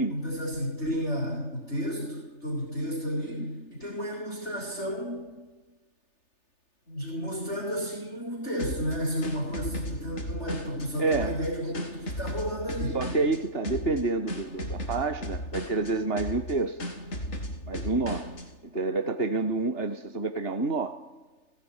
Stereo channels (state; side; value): late; right; 3.4 ms